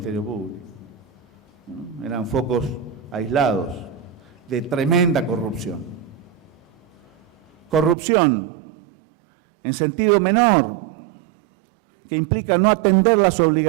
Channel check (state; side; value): drops out; left; at 8.0 s